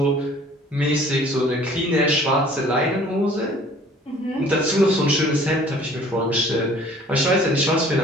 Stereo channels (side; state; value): both; normal; correlation 0.52